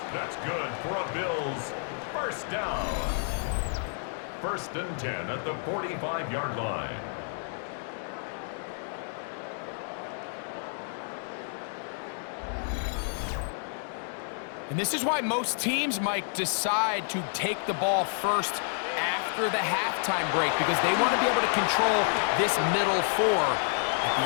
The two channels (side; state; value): right; silent; 58 dB below the other